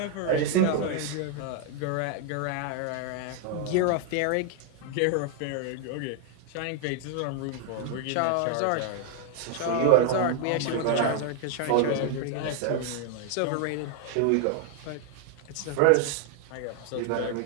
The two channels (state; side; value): different; both; correlation 0.01